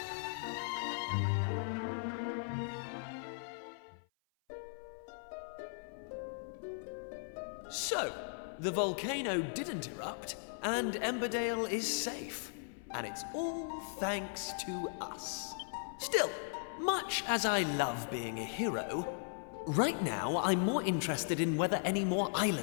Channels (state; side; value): silent; right; 53 dB below the other